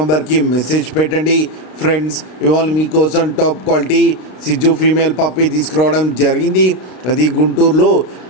మెసేజ్ పెట్టండి. ఫ్రెండ్స్, ఇవాళ మీకోసం టాప్ క్వాలిటీ సిజ్జు ఫీమేల్ పప్పీ తీసుకురావడం జరిగింది. అది గుంటూరులో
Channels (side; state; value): right; late; 32 ms